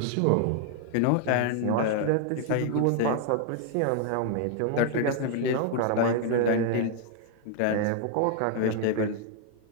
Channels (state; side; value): different; both; correlation 0.00